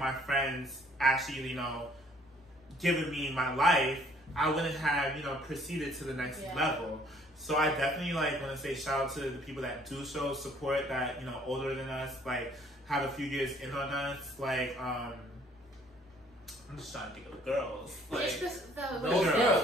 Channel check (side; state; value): both; normal; correlation 0.60